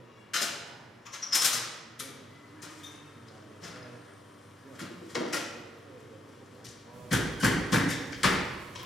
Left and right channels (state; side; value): normal; both; correlation 0.78